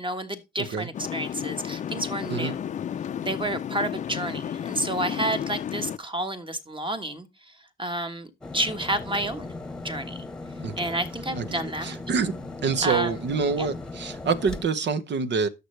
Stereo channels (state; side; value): normal; both; correlation 0.18